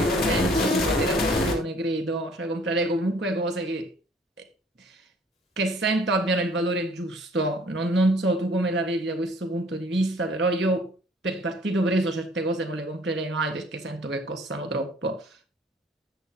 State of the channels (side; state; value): both; normal; correlation 0.56